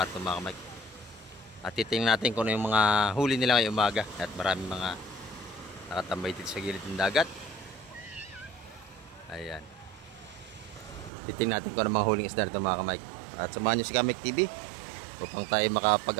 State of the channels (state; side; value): drops out; left; at 11.1 s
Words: ito mga kamay. At titingnan natin kung ano yung mga huli nila ngayong umaga. At maraming mga nakatambay dito sa gilid ng dagat. Ayan. Titingnan natin kung ano mga huling isda nito mga kamay. At samahan nyo si Kamek TV upang tayo